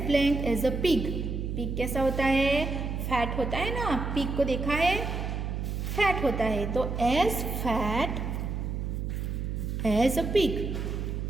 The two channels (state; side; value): noise; right; hum, 3 dB below the sound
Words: blank as a pig. Pig कैसा होता है? फैट होता है ना. पिग को देखा है? फैट होता है. तो as fat as a pig.